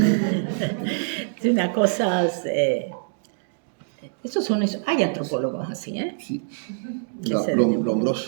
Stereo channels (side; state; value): left; silent; digital silence